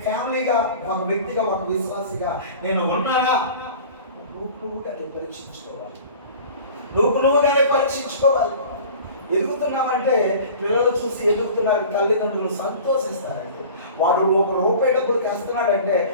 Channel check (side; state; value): both; inverted; correlation -0.41